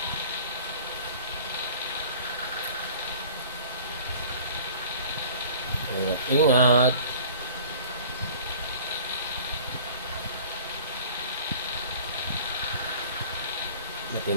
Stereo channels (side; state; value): both; inverted; correlation -0.46